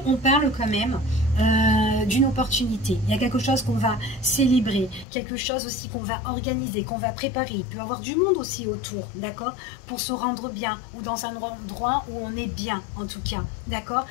on parle quand même d'une opportunité. Il y a quelque chose qu'on va célébrer, quelque chose aussi qu'on va organiser, qu'on va préparer. Il peut y avoir du monde aussi autour, d'accord, pour se rendre bien, ou dans un endroit où on est bien, en tout cas, d'accord.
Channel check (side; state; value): right; drops out; at 5.1 s